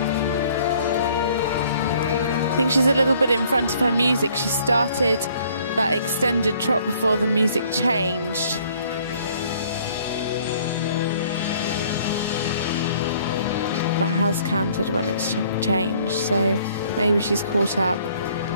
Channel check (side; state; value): both; inverted; correlation -0.59